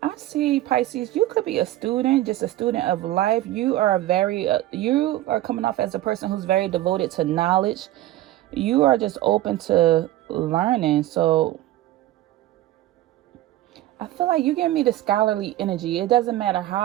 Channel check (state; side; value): quieter; left; 15.1 dB